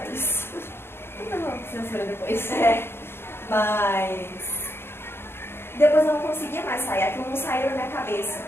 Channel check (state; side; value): late; right; 0.11 ms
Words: isso. Não, censura depois. Mas depois eu não conseguia mais sair, aquilo não saía da minha cabeça.